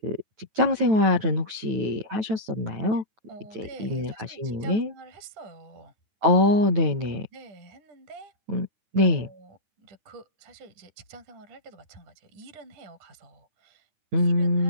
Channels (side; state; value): left; late; 9.2 ms